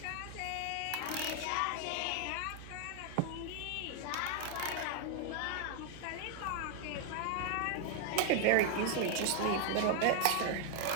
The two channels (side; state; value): both; different; correlation 0.00